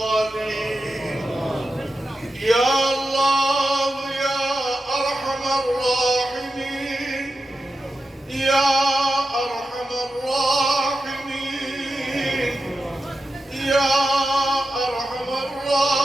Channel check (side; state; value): both; normal; correlation 0.90